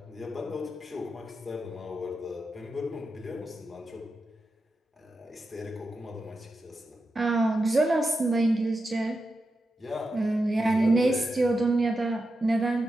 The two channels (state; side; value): normal; both; correlation 0.89